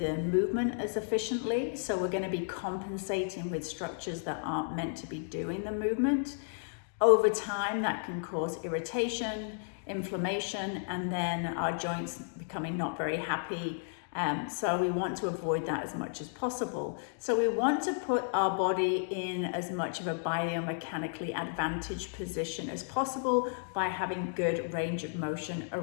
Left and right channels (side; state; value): right; silent; digital silence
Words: movement as efficiently. So we're going to be compensating with structures that aren't meant to be doing the movement. Over time, that can cause irritation, inflammation, and then our joints becoming not very happy. So we want to avoid that as much as possible. So we want to put our body in as much of a biomechanically advantaged position as possible by having good range of motion